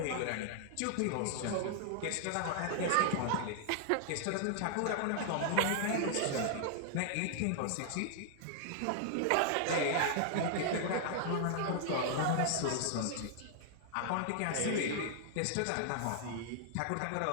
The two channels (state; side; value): different; both; correlation -0.01